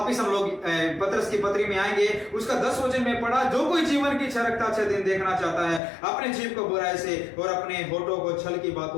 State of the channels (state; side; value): drops out; right; at 5.8 s